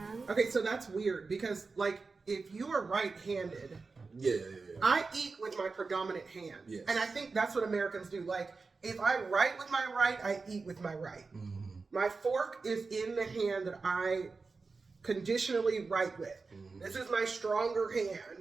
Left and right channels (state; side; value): quieter; left; 4.2 dB